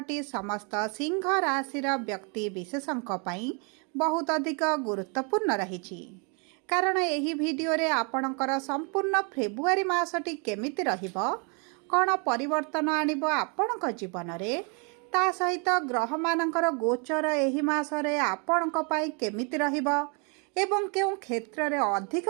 समस्त सिंह राशि व्यक्ति विशेषों बहुत अधिक गुरुत्वपूर्ण रही कारण यही वीडियो रे आपणकर संपूर्ण फेब्रुआरी मासटी केमिति रहिबो कौन परिवर्तन आणिब आपणक जीवन रे ता सहित ग्रह मानकर गोचर एही मासरे आपणक पई केमिति रहिबो एवं केउं क्षेत्र रे अधिक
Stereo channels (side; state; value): left; quieter; 35.8 dB